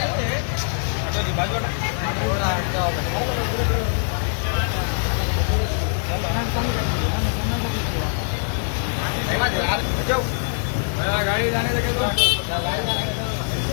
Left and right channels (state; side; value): silent; right; digital silence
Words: गाड़ी जाने लगे तो